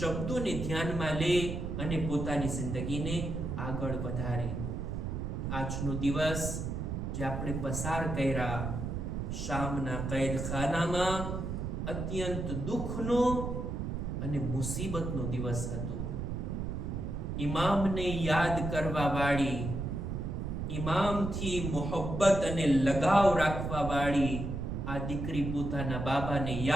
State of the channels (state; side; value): noise; right; rumble, 3 dB below the sound